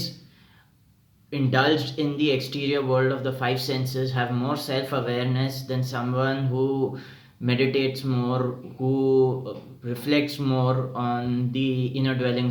indulged in the exterior world of the five senses have more self awareness than someone who meditates more, who reflects more on the inner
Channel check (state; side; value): identical; both; correlation 1.00